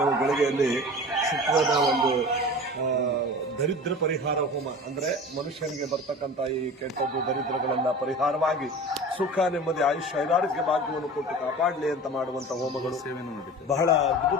ಗಳಿಗೆಯಲ್ಲಿ ಶುಕ್ರನ ಒಂದು ದರಿದ್ರ ಪರಿಹಾರ ಹೋಮ, ಅಂದ್ರೆ ಮನುಷ್ಯನಿಗೆ ಬರ್ತಕ್ಕಂಥ ಈ ಕೆಟ್ಟದ್ದು ದರಿದ್ರಗಳೆಲ್ಲ ಪರಿಹಾರವಾಗಿ ಸುಖ ನೆಮ್ಮದಿ ಆಯುಷ್ಯ ಐರಾರೋಗ್ಯ ಭಾಗ್ಯವನ್ನು ಕೊಟ್ಟು ಕಾಪಾಡಲಿ ಅಂತ ಮಾಡುವಂತ ಹೋಮಗಳು ಬಹಳ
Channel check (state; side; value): normal; both; correlation 0.37